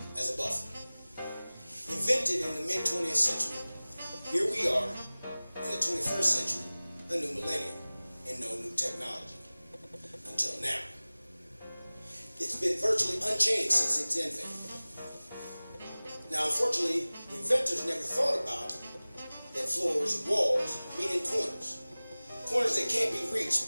as a buffer. Invented in the mid-20th century, here we are in the 21st century, a new millennium, and no new technology. Until now. It's been virtually unchanged since its invention. Now, unfortunately, the inventors never thought about that floors and walls meet in corners. Corners that can't be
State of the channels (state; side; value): inverted; both; correlation -0.99